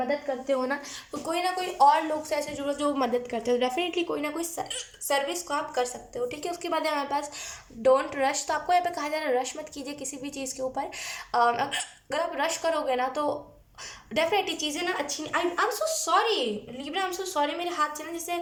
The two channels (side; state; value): both; identical; correlation 1.00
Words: करते हो ना तो कोई ना कोई और लोग से ऐसे जुड़ो जो मदद करते हो, डेफिनेटली कोई ना कोई सर्विस को आप कर सकते हो, ठीक है। उसके बाद है हमारे पास डोंट रश, तो आपको यहाँ पे कहा जा रहा है रश मत कीजिए किसी भी चीज़ के ऊपर। अगर आप रश करोगे ना तो डेफिनेटली चीज़ें ना अच्छी नहीं। आई am so sorry Libra, I am so sorry, मेरे हाथ से ना जैसे